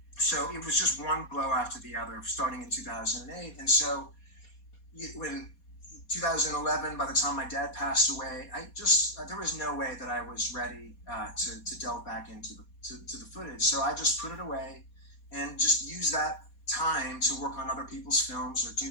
So it was just one blow after the other, starting in 2008. And so when 2011, by the time my dad passed away, there was no way that I was ready to delve back into to the footage. So I just put it away and just use that time to work on other people's films or do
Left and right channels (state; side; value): late; right; 4.2 ms